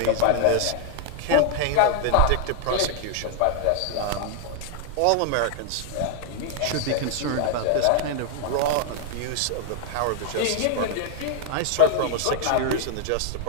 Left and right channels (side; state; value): both; different; correlation 0.00